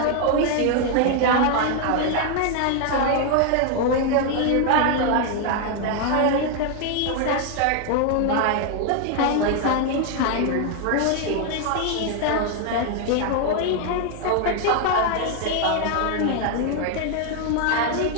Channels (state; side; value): different; both; correlation 0.00